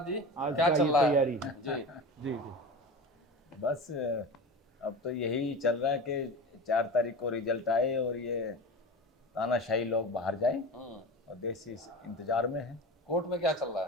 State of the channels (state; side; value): normal; both; correlation 0.29